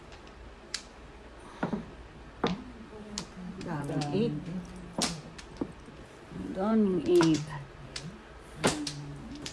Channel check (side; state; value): both; identical; correlation 1.00